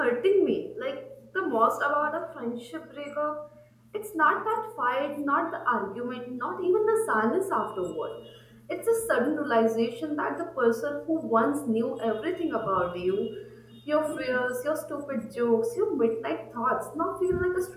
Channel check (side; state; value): both; identical; correlation 1.00